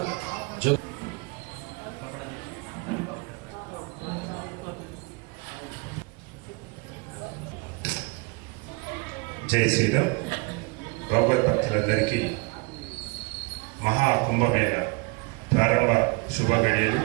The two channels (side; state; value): left; quieter; 28.1 dB